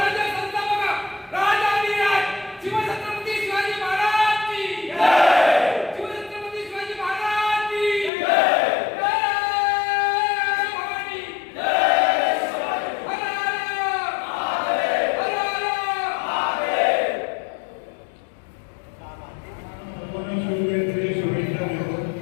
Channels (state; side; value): drops out; right; at 8.1 s